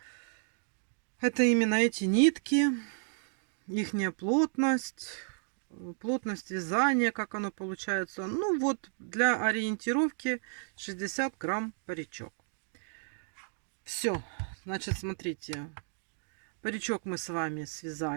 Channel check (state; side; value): silent; left; 56 dB below the other